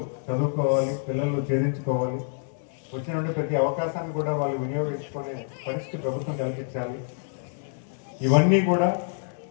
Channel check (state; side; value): silent; right; 60 dB below the other